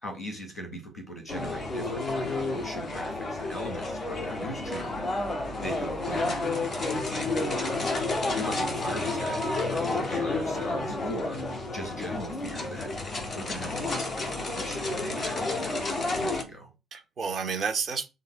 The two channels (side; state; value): both; normal; correlation 0.72